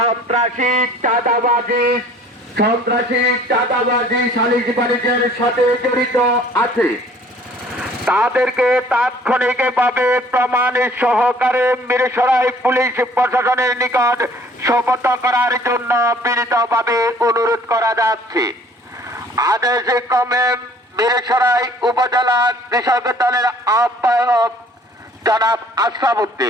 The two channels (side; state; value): both; normal; correlation 0.54